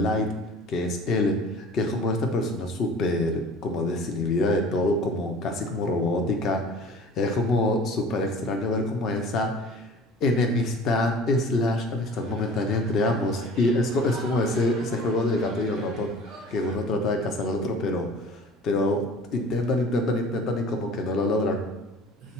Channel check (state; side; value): normal; both; correlation 0.44